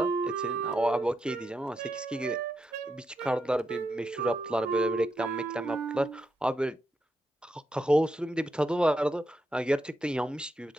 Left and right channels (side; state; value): both; normal; correlation 0.83